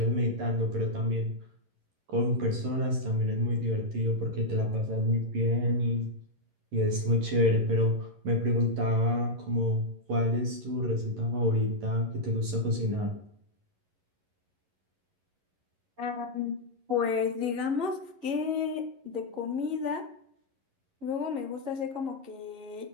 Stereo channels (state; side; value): late; left; 11 ms